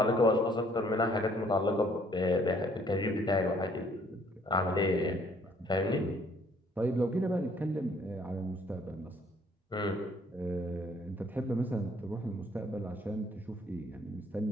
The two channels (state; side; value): normal; both; correlation 0.62